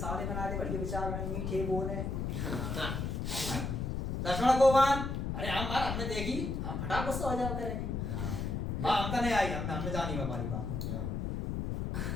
बना दे, बढ़िया विचार बने, मीठे बोले। लक्ष्मण को बन, अरे हमने देखी हम फटाक गुस्सा हो जाओ करेंगे, हम तो नहीं आई, हमने जानी हमारी बात।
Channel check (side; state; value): left; noise; rumble, 2 dB below the sound